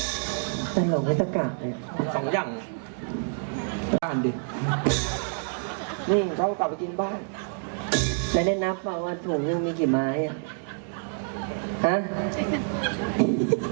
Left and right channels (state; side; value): silent; left; 60 dB below the other